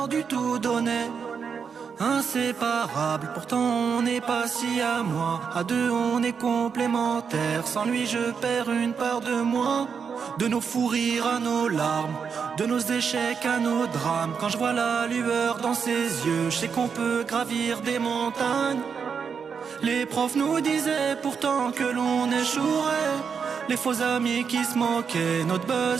du tout donné. Inséparables, pourtant on n'est pas si à moi. À deux on est complémentaires. Sans lui je perds une part de moi. De nos fous rires à nos larmes, de nos échecs à nos drames. Quand je vois la lueur dans ses yeux, je sais qu'on peut gravir des montagnes. Les profs nous disaient pourtant que l'on échouerait. Les faux amis qui se moquaient, notre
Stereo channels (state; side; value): quieter; left; 6.3 dB